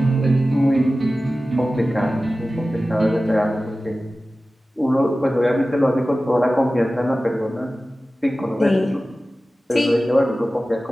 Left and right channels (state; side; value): normal; both; correlation 0.96